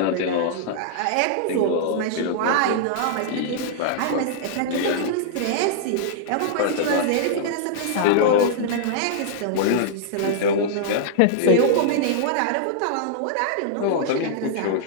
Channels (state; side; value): different; both; correlation -0.01